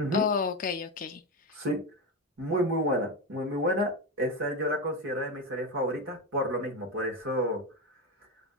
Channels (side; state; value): both; normal; correlation 0.15